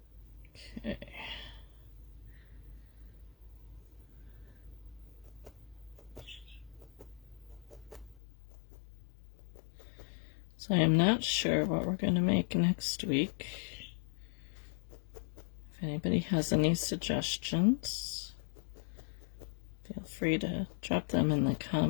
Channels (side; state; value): right; drops out; at 8.2 s